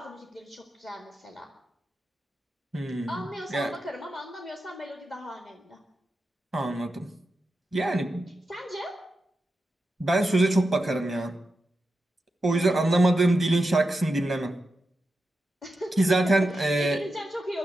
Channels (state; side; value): normal; both; correlation 0.89